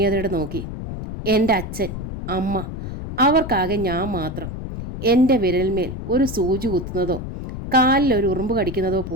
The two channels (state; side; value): noise; left; rumble, 7 dB below the sound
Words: നോക്കി. എൻ്റെ അച്ഛൻ, അമ്മ, അവർക്കാകെ ഞാൻ മാത്രം. എൻ്റെ വിരൽമേൽ ഒരു സൂചി കുത്തുന്നതോ കാലിൽ ഒരു ഉറുമ്പ് കടിക്കുന്നതോ